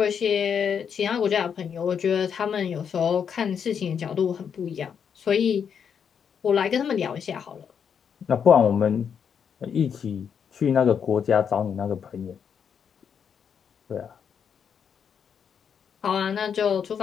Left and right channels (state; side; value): quieter; right; 7.4 dB